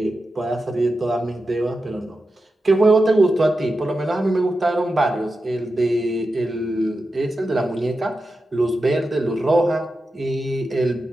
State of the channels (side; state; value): both; normal; correlation 0.90